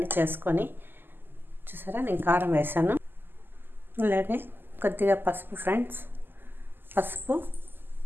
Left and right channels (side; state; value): left; late; 0.095 ms